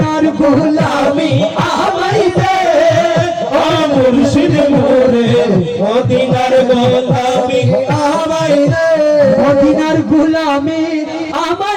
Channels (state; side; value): identical; both; correlation 1.00